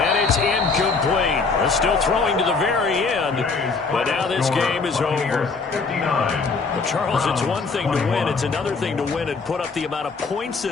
it's incomplete. They're still throwing to the very end. But now this game is over. Well, Charles, it's one thing to win. It's another thing to win and put up the amount of points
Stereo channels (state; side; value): quieter; right; 4.5 dB